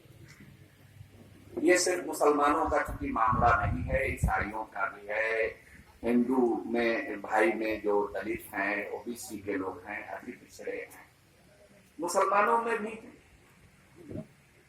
ये सिर्फ मुसलमानों का चूंकि मामला नहीं है, ईसाइयों का भी है, हिंदू में भाई में जो दलित हैं, ओबीसी के लोग हैं, अति पिछड़े हैं, मुसलमानों में भी।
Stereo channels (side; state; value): both; identical; correlation 1.00